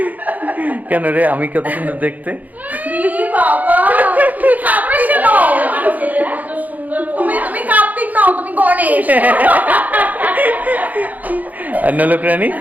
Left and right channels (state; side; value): late; left; 0.080 ms